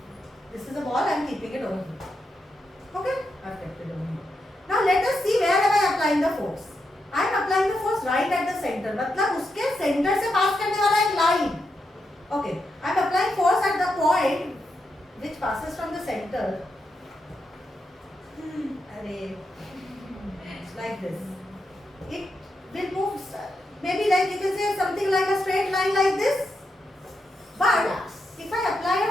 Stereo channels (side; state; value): both; normal; correlation 0.84